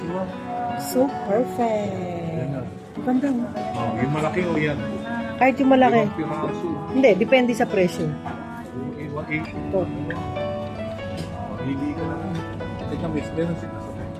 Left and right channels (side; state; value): both; identical; correlation 1.00